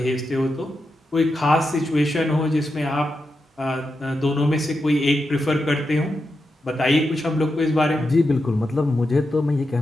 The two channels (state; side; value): normal; both; correlation 0.87